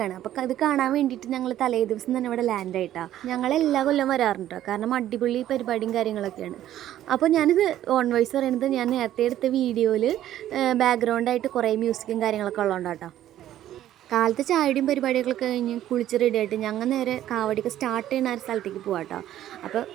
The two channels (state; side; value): quieter; left; 12.5 dB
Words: അപ്പോൾ അത് കാണാൻ വേണ്ടിയിട്ട് ഞങ്ങൾ തലേ ദിവസം തന്നെ ഇവിടെ ലാൻഡായിട്ടാണ്. ഞങ്ങൾ എല്ലാ കൊല്ലം വരാറുണ്ട്, കാരണം അടിപൊളി പരിപാടിയും കാര്യങ്ങളൊക്കെയാണ്. അപ്പോൾ ഞാനിത് ഓൺ വോയിസ് പറയുന്നത് ഞാൻ നേരത്തെ എടുത്ത വീഡിയോയിൽ ബാക്ക്ഗ്രൗണ്ടായിട്ട് കുറേ മ്യൂസിക്കും കാര്യങ്ങളൊക്കെ ഉള്ളതുകൊണ്ടാട്ടോ. കാലത്ത് ചായയുടെയും പരിപാടികളൊക്കെ കഴിഞ്ഞ് കുളിച്ച് റെഡിയായിട്ട് ഞങ്ങൾ നേരെ കാവടിയൊക്കെ സ്റ്റാർട്ട് ചെയ്യുന്ന ഒരു സ്ഥലത്തേക്ക് പോവാം കേട്ടോ. അപ്പോൾ